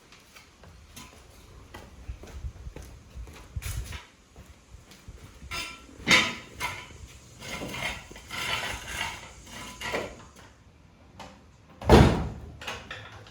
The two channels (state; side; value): identical; both; correlation 1.00